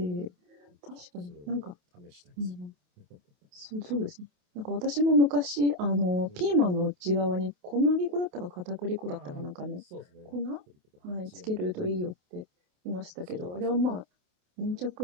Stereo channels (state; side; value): late; left; 28 ms